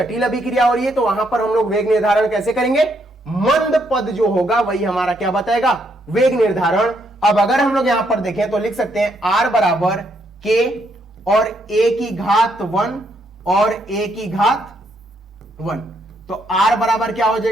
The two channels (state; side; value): normal; both; correlation 0.74